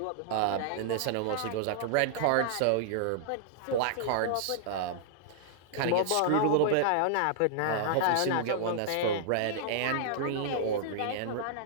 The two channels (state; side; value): different; both; correlation -0.01